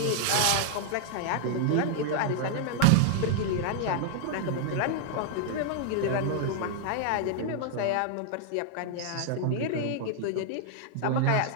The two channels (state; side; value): different; both; correlation 0.00